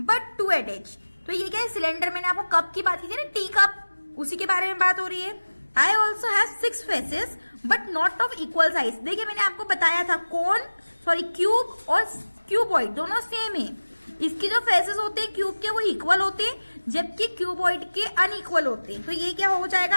2 edges. तो ये क्या है? सिलेंडर। मैंने आपको कप की बात की थी ना, टी कप, उसी के बारे में बात हो रही है। I also have 6 faces but not of equal size. देखिए मैंने आपको बताया था कौन, सॉरी क्यूब और क्यूबॉइड दोनों सेम है। इसके जो फेसेस होते हैं क्यूब के वो इक्वल होते हैं, जबकि क्यूबॉइड के अनइक्वल होते हैं। तो ये क्या हो जाएगा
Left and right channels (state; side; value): inverted; both; correlation -1.00